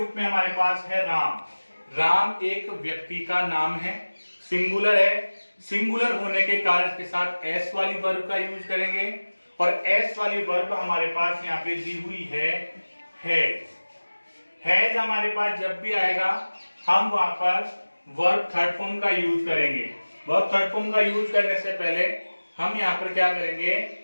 में हमारे पास है राम। राम एक व्यक्ति का नाम है, सिंगुलर है। सिंगुलर होने के कारण इसके साथ एस वाली वर्ब का यूज करेंगे, और एस वाली वर्ब हमारे पास यहाँ पे दी हुई है हैज। हैज हमारे पास जब भी आएगा हम वहां पर वर्ब थर्ड फॉर्म का यूज करेंगे। वर्ब थर्ड फॉर्म का यूज करने से पहले हम यहाँ पर क्या करेंगे,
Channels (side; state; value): both; inverted; correlation -1.00